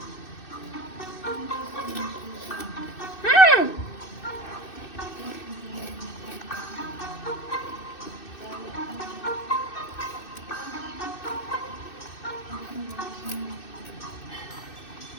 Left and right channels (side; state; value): right; late; 2.6 ms